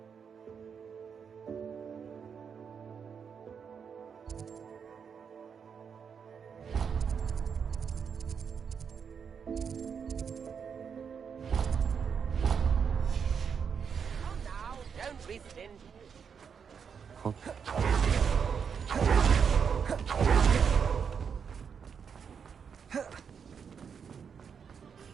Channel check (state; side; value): quieter; left; 6.7 dB